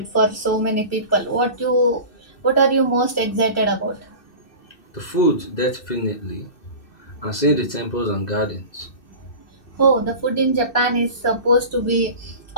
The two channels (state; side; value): late; right; 2.6 ms